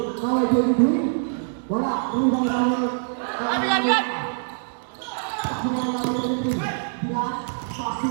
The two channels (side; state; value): left; silent; digital silence